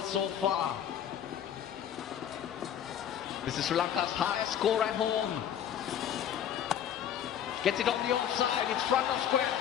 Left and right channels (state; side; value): quieter; right; 9.7 dB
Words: so far. This is Sri Lanka's highest score at home. Gets it on the offside, it's front of square,